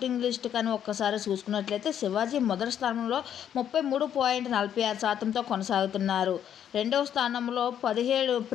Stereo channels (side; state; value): right; quieter; 9.6 dB